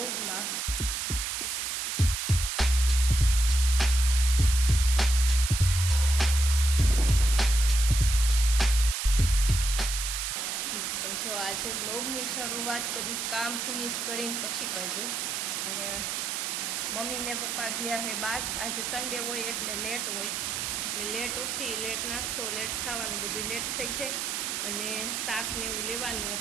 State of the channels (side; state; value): right; noise; hiss, 2 dB below the sound